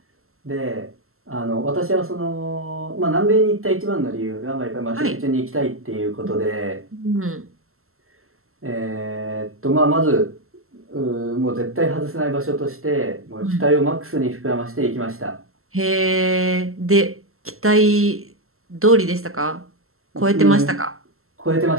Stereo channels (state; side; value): late; left; 0.62 ms